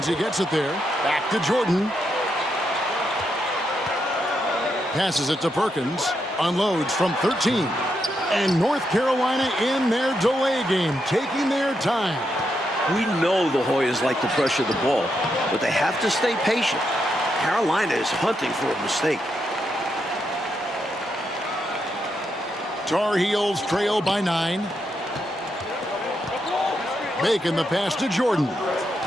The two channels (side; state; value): both; normal; correlation 0.82